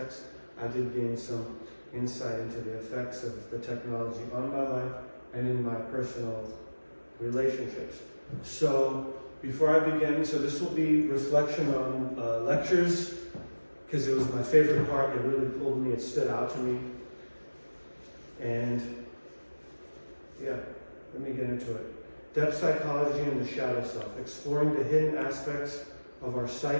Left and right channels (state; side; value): inverted; both; correlation -1.00